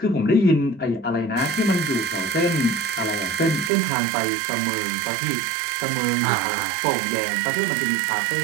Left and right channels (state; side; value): drops out; left; at 3.7 s